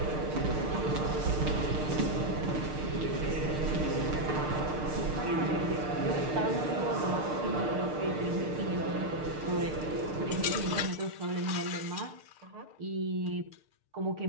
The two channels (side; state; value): left; late; 6.6 ms